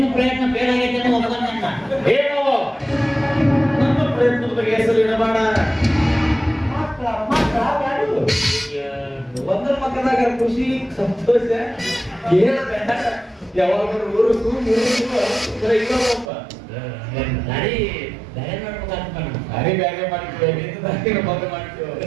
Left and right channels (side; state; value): left; drops out; at 16.3 s